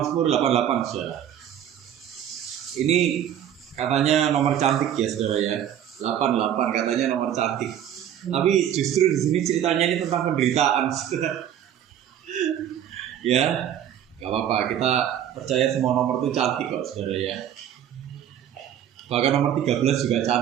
88, saudara. Ini katanya nomor cantik ya, saudara ya. 88 katanya nomor cantik. Tapi justru di sini ceritanya ini tentang penderitaan, saudara. Ya, nggak apa-apa. Kita percaya semua nomor itu cantik kok, saudara ya. Bahkan nomor 13 juga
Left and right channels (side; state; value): left; quieter; 10.2 dB